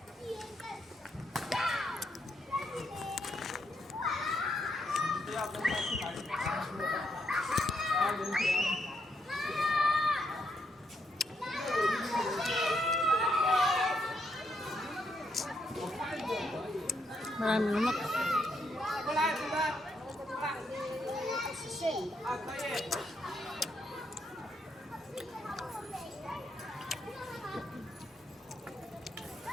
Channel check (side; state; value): both; normal; correlation 0.78